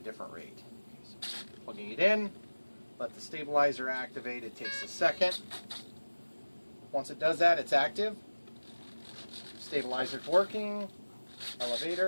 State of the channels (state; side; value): inverted; both; correlation -1.00